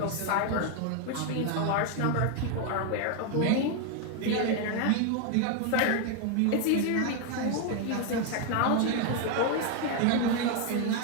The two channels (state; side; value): different; both; correlation 0.01